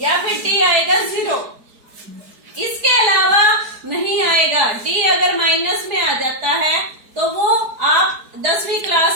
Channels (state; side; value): late; left; 4.7 ms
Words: या फिर डी आएगा 0। इसके अलावा नहीं आएगा। डी अगर माइनस में आ जाता है तो वो आप 10वीं